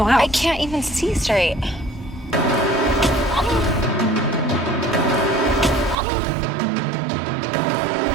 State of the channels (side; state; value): left; drops out; at 6.0 s